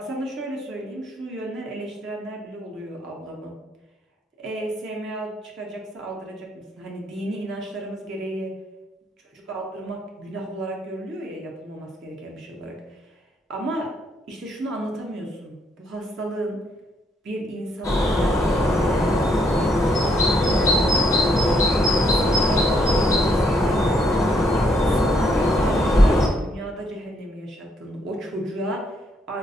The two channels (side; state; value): both; normal; correlation 0.72